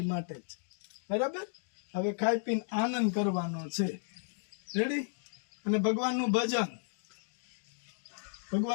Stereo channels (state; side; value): silent; right; digital silence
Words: માટે જ, બરાબર. હવે ખાઈ પીને આનંદ કરવાનો છે, રેડી. અને ભગવાનનું ભજન